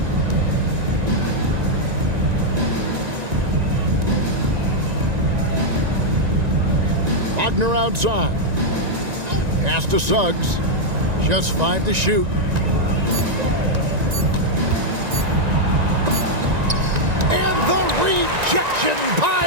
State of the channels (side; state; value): left; late; 1.9 ms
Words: Wagner outside. Pass to Suggs. Just 5 to shoot. And the rejection